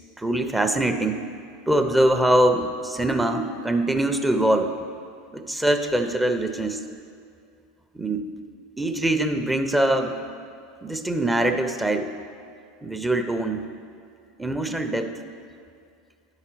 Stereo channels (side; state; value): both; normal; correlation 0.77